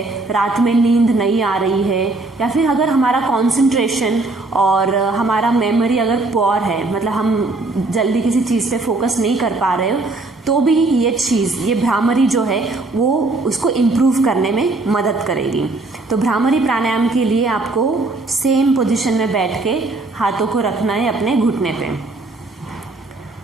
रात में नींद नहीं आ रही है, या फिर अगर हमारा कंसंट्रेशन और हमारा मेमोरी अगर पुअर है, मतलब हम जल्दी किसी चीज़ पे फोकस नहीं कर पा रहे हो, तो भी ये भ्रामरी जो है वो उसको इम्प्रूव करने में मदद करेगी। तो भ्रामरी प्राणायाम के लिए आपको सेम पोजीशन में बैठ के हाथों को रखना है अपने घुटने पे।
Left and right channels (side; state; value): left; quieter; 3.2 dB